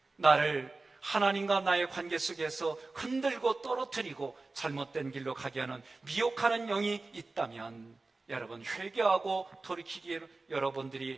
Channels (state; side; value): quieter; left; 3.5 dB